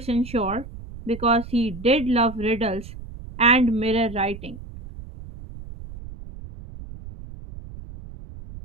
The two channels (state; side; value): noise; right; rumble, 14 dB below the sound